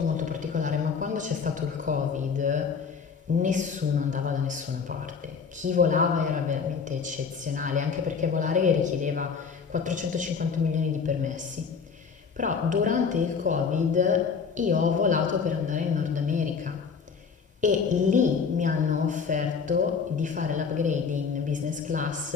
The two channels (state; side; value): quieter; right; 5.8 dB